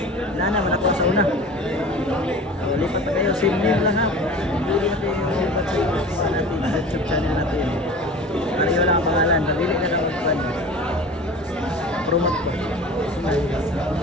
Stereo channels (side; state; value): both; normal; correlation 0.38